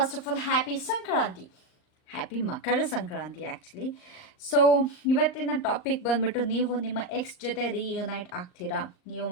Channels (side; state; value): right; late; 39 ms